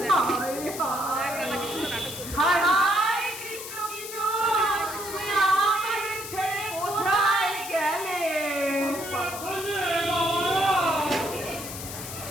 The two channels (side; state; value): left; noise; hiss, 9 dB below the sound